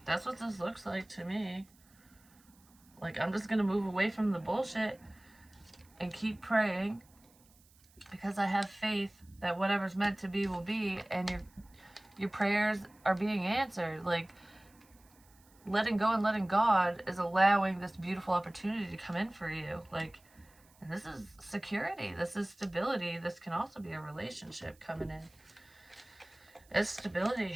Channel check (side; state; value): right; noise; hiss, 29 dB below the sound